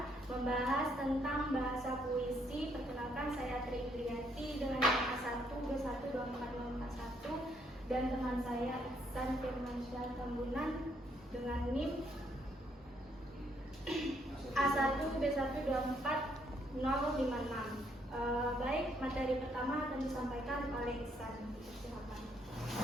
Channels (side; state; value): both; normal; correlation 0.71